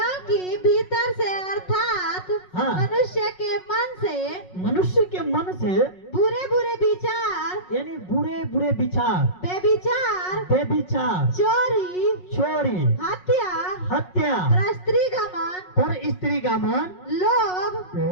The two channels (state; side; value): late; right; 5.5 ms